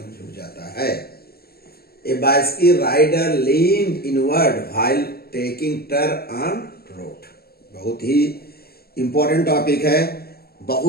झुक जाता है? A bicycle rider leaned inward while taking turn on road। बहुत ही इंपॉर्टेंट टॉपिक है।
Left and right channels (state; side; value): late; right; 0.45 ms